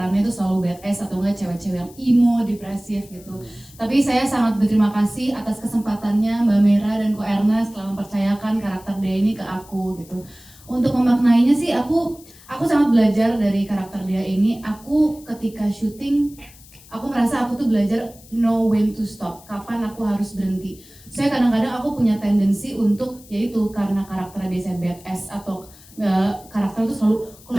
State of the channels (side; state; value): left; noise; hiss, 23 dB below the sound